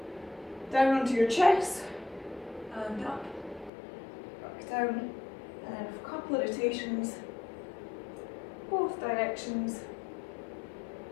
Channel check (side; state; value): right; drops out; at 3.7 s